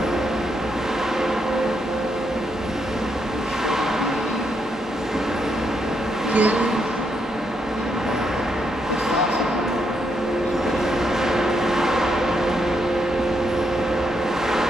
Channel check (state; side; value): normal; both; correlation 0.79